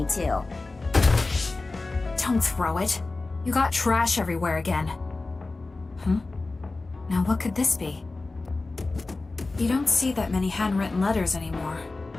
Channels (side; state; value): right; quieter; 3.4 dB